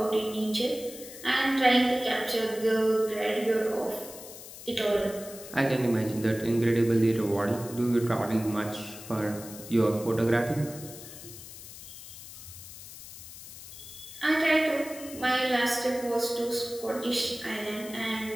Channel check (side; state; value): left; noise; hiss, 14 dB below the sound